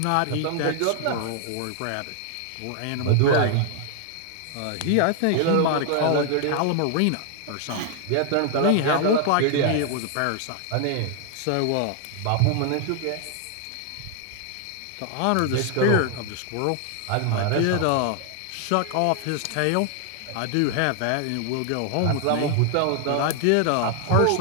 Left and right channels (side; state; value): both; different; correlation 0.00